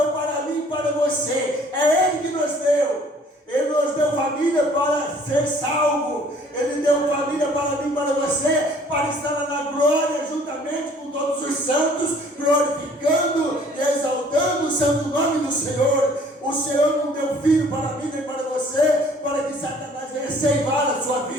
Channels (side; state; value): both; normal; correlation 0.55